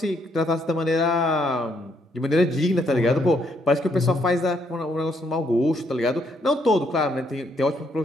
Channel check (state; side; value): normal; both; correlation 0.73